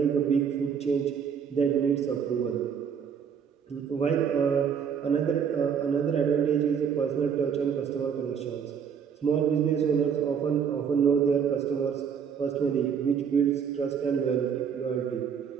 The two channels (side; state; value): left; quieter; 7.3 dB